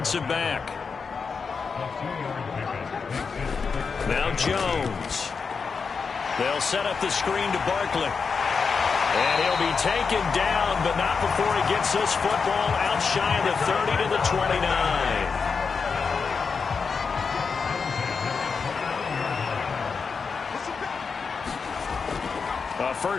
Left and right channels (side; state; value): right; quieter; 5.3 dB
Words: back. Now Jones. They'll set up the screen to Barkley. And he'll be taken down, but not before he gets this football out shy of the 30 to the 29. A